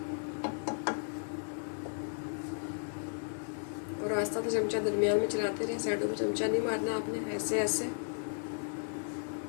और आस्ता तो चमचा दरमियान में चलाते रहे, साइडों पे चमचा नहीं मारना आपने, ऐसे ऐसे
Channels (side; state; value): right; silent; digital silence